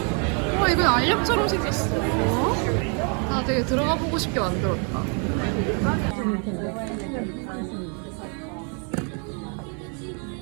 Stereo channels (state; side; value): quieter; left; 38.5 dB